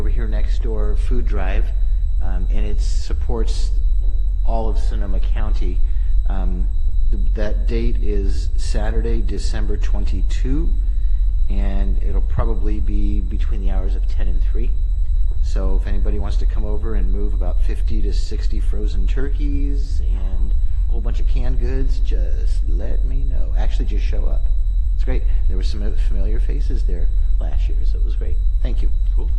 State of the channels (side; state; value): both; identical; correlation 1.00